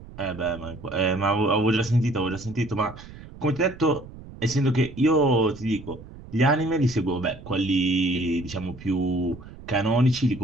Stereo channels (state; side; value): noise; right; rumble, 17 dB below the sound